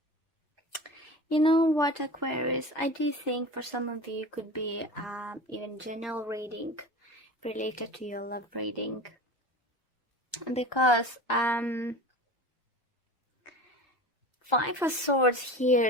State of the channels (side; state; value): both; normal; correlation 0.33